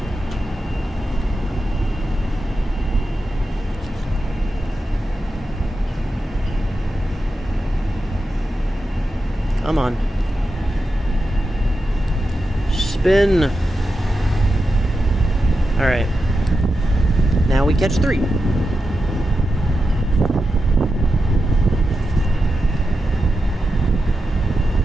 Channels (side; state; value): both; normal; correlation 0.89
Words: Come on. Spin. Alright. Now we catch 3.